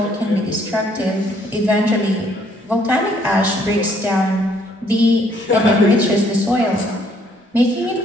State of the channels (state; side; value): normal; both; correlation 0.65